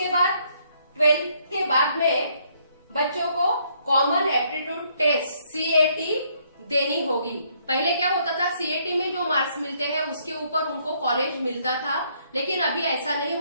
बाद 12th के बाद में बच्चों को कॉमन एप्टीट्यूड टेस्ट CAT देनी होगी। पहले क्या होता था, CAT में जो मार्क्स मिलते हैं उसके ऊपर उनको कॉलेज मिलता था, लेकिन अभी ऐसा नहीं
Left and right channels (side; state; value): both; inverted; correlation -0.69